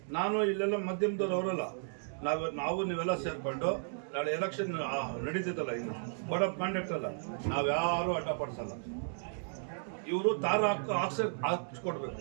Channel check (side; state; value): left; silent; digital silence